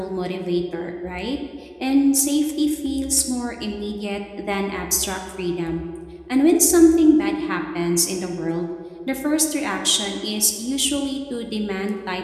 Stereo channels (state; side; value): identical; both; correlation 1.00